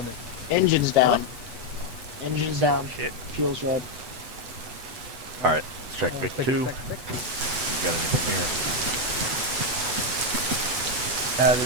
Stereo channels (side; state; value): left; late; 8.1 ms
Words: Engine's down. Engine's down. Shit. Fuel's red. Alright, let's check Vic Take 2. it, You check it. got anything here?